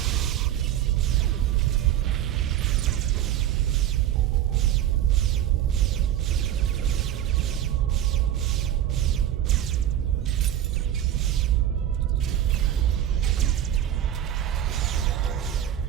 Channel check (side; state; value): left; quieter; 11.4 dB